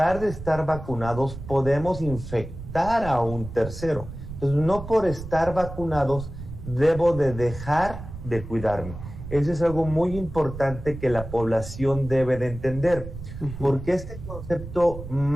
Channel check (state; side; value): noise; right; rumble, 11 dB below the sound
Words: de estar vacunados podemos infectar a un tercero. Entonces, no por estar vacunados debo de dejar de cuidarme. Eso es algo muy importante que la población debe de entender, porque este concepto